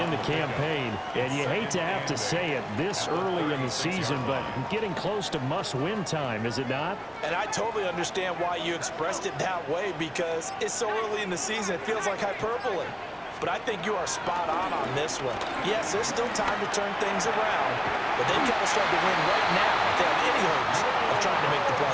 the campaign. And you hate to have to say it this early in the season, but getting close to must-win time, is it not? And I totally understand why you expressed it that way because it's so early in the season, it feels like hyperbole. But I think you are spot on this one. Yes, there's still time to turn things around, but they've got to start to win right now if they have any hopes of trying to make the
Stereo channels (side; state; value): both; identical; correlation 1.00